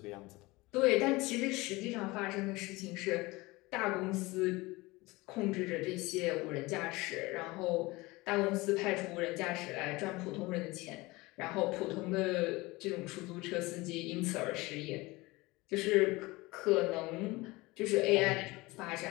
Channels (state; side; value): quieter; right; 22.0 dB